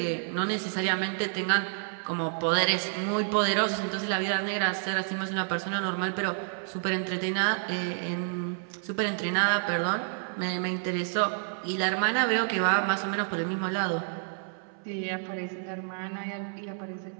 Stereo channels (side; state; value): left; silent; 58 dB below the other